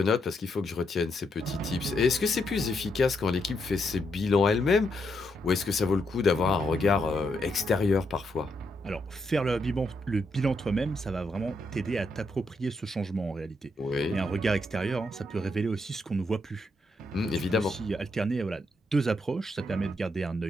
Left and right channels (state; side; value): normal; both; correlation 0.79